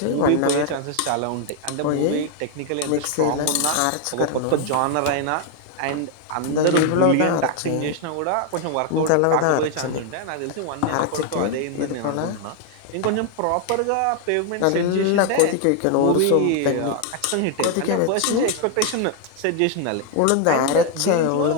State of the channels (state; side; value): different; both; correlation 0.00